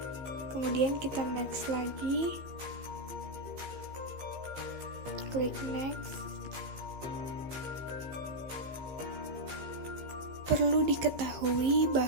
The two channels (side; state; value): left; late; 15 ms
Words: Kemudian kita next lagi. Klik next. Perlu diketahui